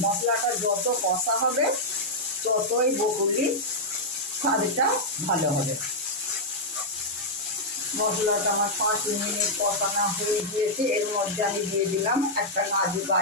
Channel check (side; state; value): both; normal; correlation -0.05